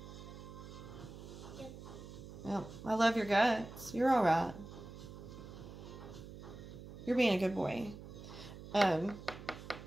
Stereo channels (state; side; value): noise; right; hum, 13 dB below the sound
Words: Yep. I love your guts. You're alright. You're being a good boy.